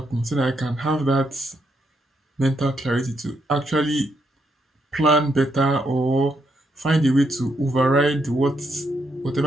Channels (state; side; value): normal; both; correlation 0.78